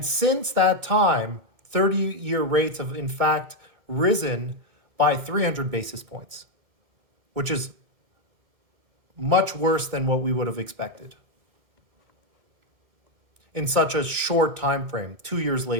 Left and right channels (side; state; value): left; late; 2.2 ms